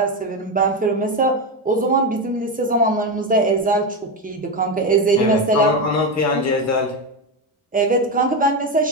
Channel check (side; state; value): both; normal; correlation 0.13